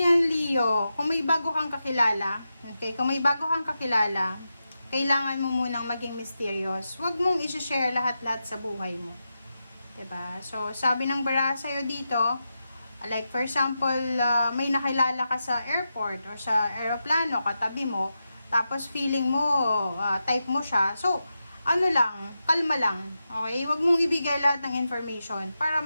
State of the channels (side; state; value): both; inverted; correlation -0.89